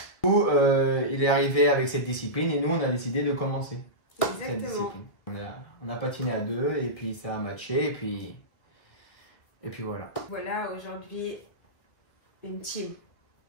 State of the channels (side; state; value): right; late; 1.8 ms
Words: Du coup, il est arrivé avec cette discipline et nous, on a décidé de commencer. Cette discipline. On a patiné à deux et puis ça a matché et puis voilà. Voilà, aujourd'hui, une team.